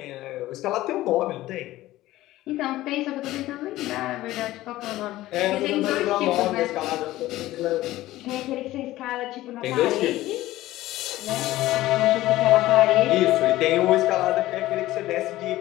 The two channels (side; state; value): right; quieter; 16.1 dB